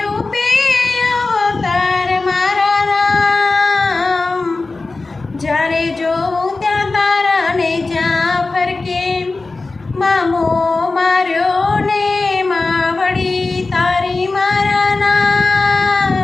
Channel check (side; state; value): right; quieter; 3.5 dB